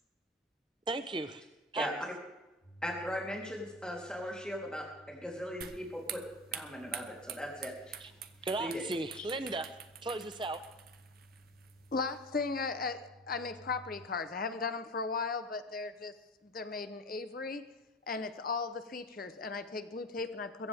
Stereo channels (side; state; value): both; normal; correlation 0.34